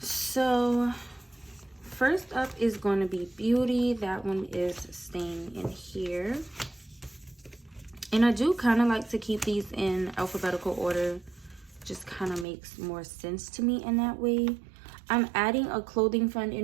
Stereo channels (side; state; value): left; drops out; at 12.5 s